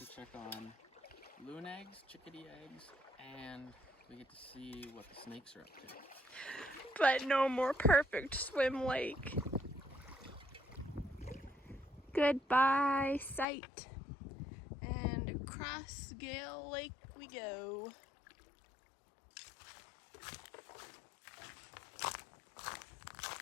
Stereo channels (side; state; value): right; drops out; at 13.5 s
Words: check on loon eggs, chickadee eggs, and we get to see what the snakes are up to. But no more perfect swim lake. Goodbye, sight. And across Gale Lake we go.